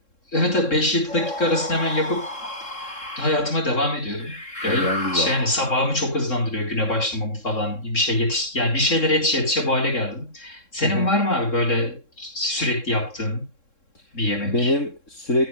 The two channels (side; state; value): right; late; 3.7 ms